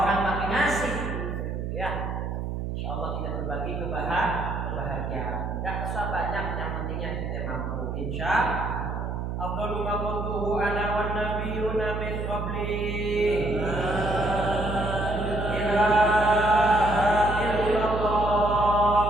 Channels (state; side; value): noise; right; hum, 4 dB below the sound